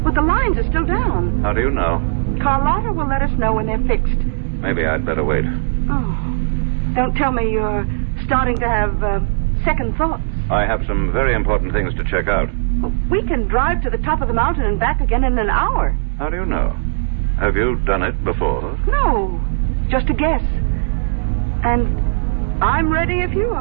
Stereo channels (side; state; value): left; silent; digital silence